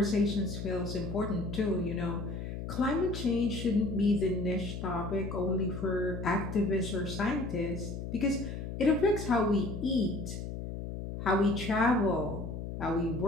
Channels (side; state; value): left; noise; hum, 6 dB below the sound